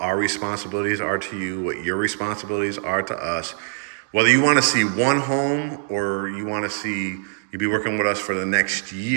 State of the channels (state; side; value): silent; left; digital silence